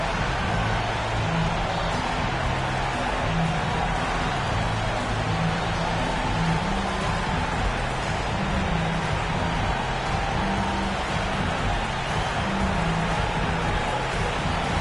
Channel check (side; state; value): both; identical; correlation 1.00